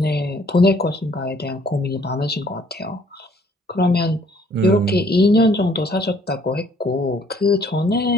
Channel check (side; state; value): both; normal; correlation 0.61